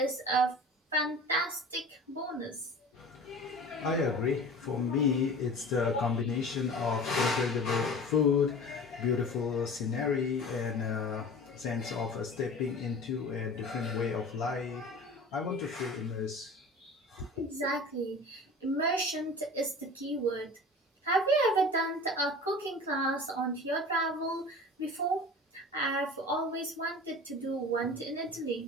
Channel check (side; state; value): both; normal; correlation 0.38